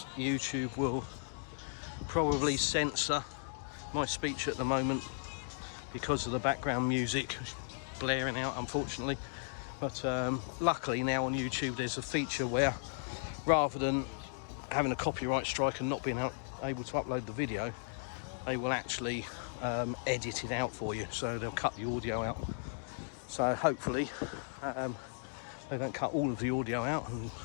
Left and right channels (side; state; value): right; silent; digital silence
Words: YouTube will probably censor my speech at the moment because of the background music blaring out, unfortunately. But luckily now on YouTube there's a feature where, rather than having a copyright strike and not being able to upload the video, they will actually edit it out for you, so they'll cut the audio out. So hopefully they don't cut all of the audio out and